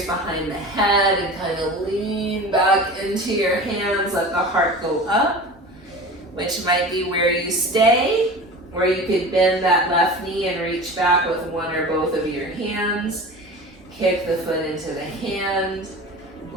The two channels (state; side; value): normal; both; correlation 0.35